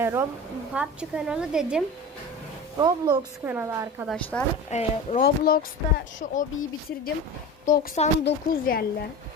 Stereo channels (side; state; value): both; normal; correlation 0.31